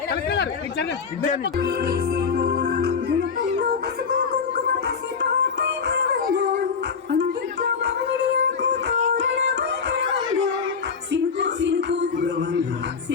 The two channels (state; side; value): quieter; right; 5.7 dB